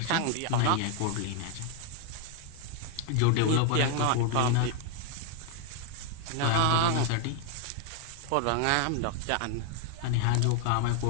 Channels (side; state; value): both; different; correlation 0.00